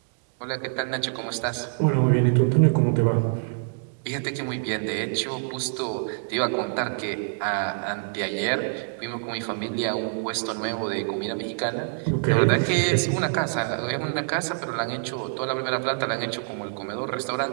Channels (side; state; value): left; silent; digital silence